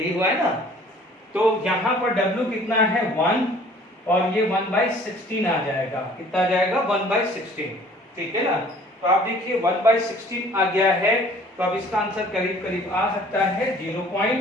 हुआ है ना। तो यहाँ पर W कितना है 1 और ये 1/16 आ जाएगा। कितना आ जाएगा 1/16, ठीक है ना। तो आप देखिए 1/16 आ गया है, तो अब इसका आंसर करीब करीब आ सकता है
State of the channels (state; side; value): normal; both; correlation 0.53